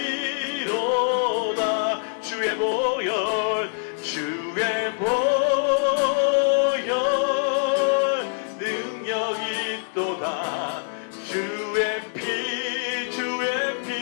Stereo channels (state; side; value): silent; right; digital silence